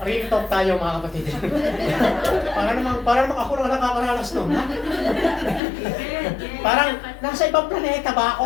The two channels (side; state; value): right; drops out; at 5.6 s